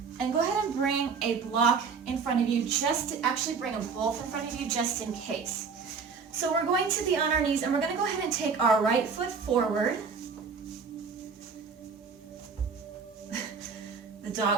And go ahead and bring a block in front of you, just to actually bring them both in front of you just in case. So we're going to be on our knees, and we're going to go ahead and take our right foot forward. The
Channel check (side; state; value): left; quieter; 5.5 dB